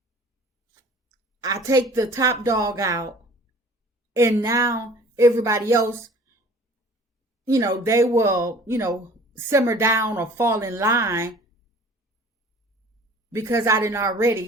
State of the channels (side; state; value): both; normal; correlation 0.48